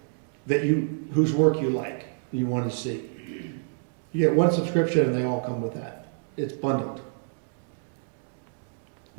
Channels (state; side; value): silent; left; digital silence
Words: whose work you like, you want to see. You get one subscription and they all come with that. It's bundled.